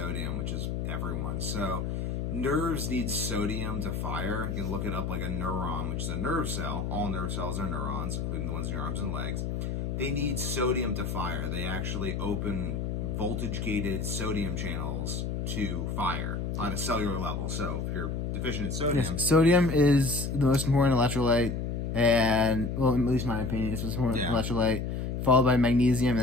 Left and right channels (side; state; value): left; noise; hum, 2 dB below the sound